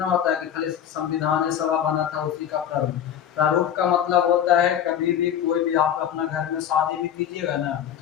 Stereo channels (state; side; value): quieter; right; 9.5 dB